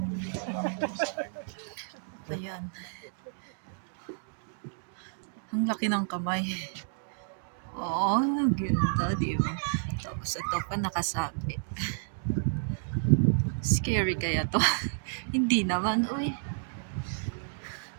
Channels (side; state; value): left; silent; digital silence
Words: Ayan. Ang laki ng kamay. Oo, ganda, di ba? Tapos ito pa nakasabi. Scary kaya to? Hindi naman, uy.